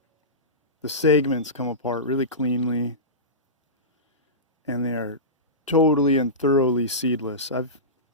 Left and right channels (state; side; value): normal; both; correlation -0.19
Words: segments come apart really cleanly, and they are totally and thoroughly seedless. I